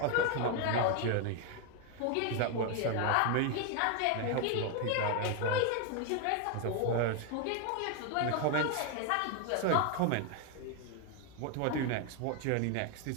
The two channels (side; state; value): both; different; correlation 0.01